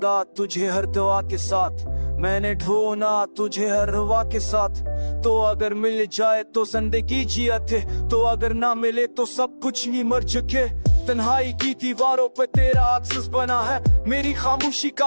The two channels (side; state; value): both; inverted; correlation -1.00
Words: तुझे हर दुआ के साथ, मैंने ढूंढा तुझे हर रुआ के साथ। तो अगर मिल जाए तो जिंदगी जियत है, तो अगर ना मिले तो सब कुछ ही मर चुके। तन्हाई की दीवारों पे तेरा अक्स बना है, मेरी खामोशी का